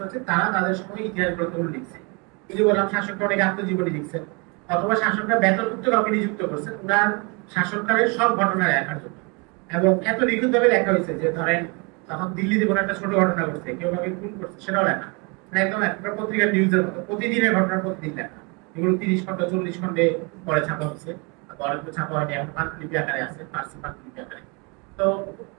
আছে, তারা তাদের সময় ইতিহাস গ্রন্থগুলো লিখছে। এই যে বললাম শাসকরা অনেক আত্মজীবনী লিখছেন, অথবা শাসকরা বেতনভুক্ত কাউকে নিযুক্ত করছেন ওনার শাসনকালের সব ঘটনা লেখার জন্য। এবং এত নিখুঁতভাবে লেখা হয়েছে যে ধরেন তখন দিল্লিতে কোনো একটা ছোট ঘটনা ঘটছে, কেউ কাউকে খুন করছে, সেটাও লেখা। মানে একদম একটা পত্রিকার নিউজের মতো প্রতিদিনের ঘটনা প্রতিদিন লেখা। এগুলো 30 খন্ড 40 খন্ডে পরে ছাপা হচ্ছে, অনেকগুলো ছাপা হয়নি, এখন পাণ্ডুলিপি আকারে আছে, ফার্সি পাণ্ডুলিপি আকারে। তো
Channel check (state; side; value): quieter; left; 31.1 dB